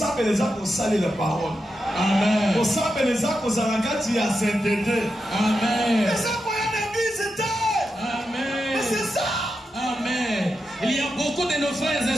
les gens qui ont salé la parole. Amen. Pour ça, les gens qui ont sainteté. Amen. Les gens qui ont l'église étaient. Amen. C'est ça. Amen. Il y a beaucoup de nos frères et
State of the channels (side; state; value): both; normal; correlation 0.88